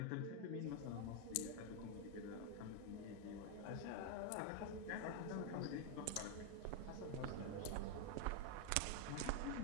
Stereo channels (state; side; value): different; both; correlation 0.01